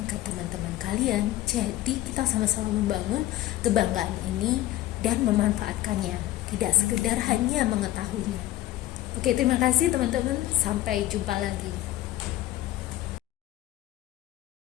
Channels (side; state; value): right; quieter; 14.8 dB